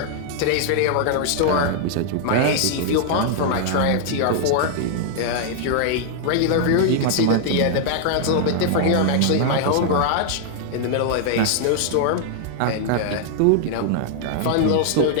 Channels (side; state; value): both; different; correlation 0.00